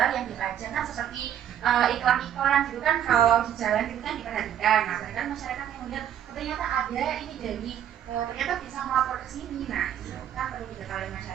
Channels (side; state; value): left; quieter; 10.3 dB